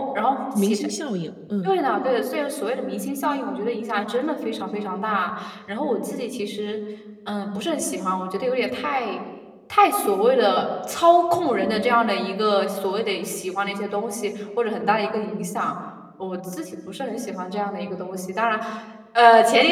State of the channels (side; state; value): both; identical; correlation 1.00